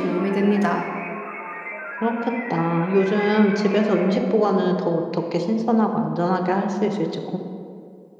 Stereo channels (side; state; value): both; identical; correlation 1.00